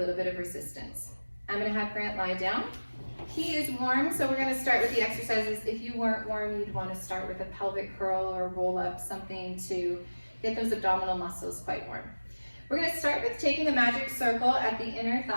bit of resistance. I'm going to have Grant lie down. He is warm, so we're going to start with the exercises. If you weren't warm, you'd want to start with a pelvic curl or roll up, something to get those abdominal muscles quite warm. We're going to start with taking the magic circle at the inner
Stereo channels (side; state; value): both; inverted; correlation -1.00